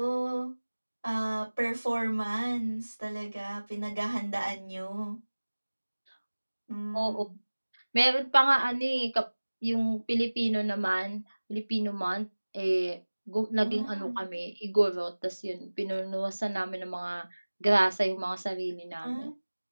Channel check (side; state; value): both; inverted; correlation -1.00